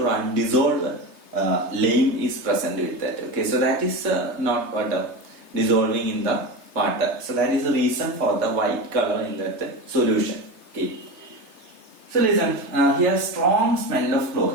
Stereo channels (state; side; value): late; left; 3.3 ms